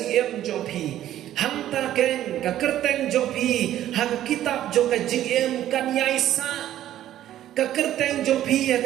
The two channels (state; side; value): quieter; left; 12.5 dB